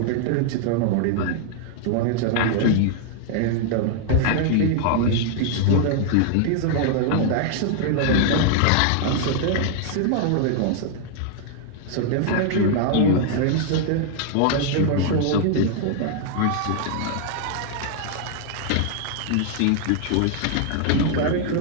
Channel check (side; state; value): both; different; correlation 0.00